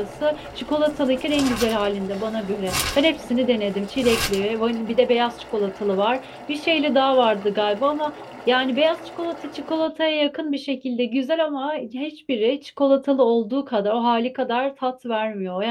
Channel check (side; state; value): both; identical; correlation 1.00